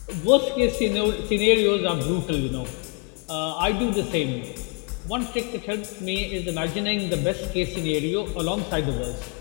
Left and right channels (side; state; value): right; quieter; 34.7 dB